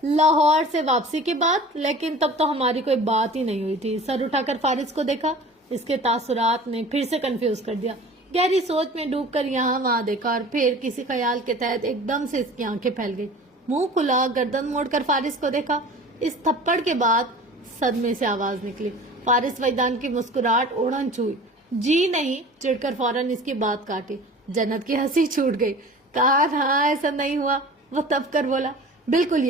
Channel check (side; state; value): both; normal; correlation 0.41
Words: لاہور سے واپسی کے بعد؟ لیکن تب تو ہماری کوئی بات ہی نہیں ہوئی تھی۔ سر اٹھا کر فارس کو دیکھا۔ اس کے تاثرات نے پھر سے کنفیوز کر دیا۔ گہری سوچ میں ڈوب کر یہاں وہاں دیکھا اور پھر کسی خیال کے تحت ایک دم سے اس کی آنکھیں پھیل گئی۔ منہ کھلا، گردن موڑ کر فارس کو دیکھا۔ اس تھپڑ کے بعد صدمے سے آواز نکلی۔ فارس وجدان کی مسکراہٹ اوڑھن چھوئی۔ جی نہیں، چڑ کر فوراً اس کی بات کاٹی۔ جنت کی ہنسی چھوٹ گئی۔ کہا ہاں ایسا نہیں ہوا۔ وہ تب کر بولا، بالکل